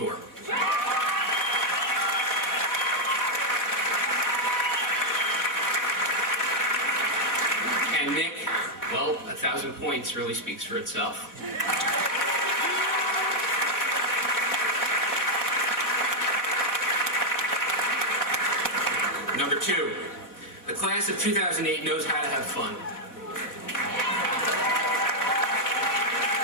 And Nick, well, 1,000 points really speaks for itself. Number 2, the class of 2008 knows how to have fun.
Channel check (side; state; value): right; late; 4.1 ms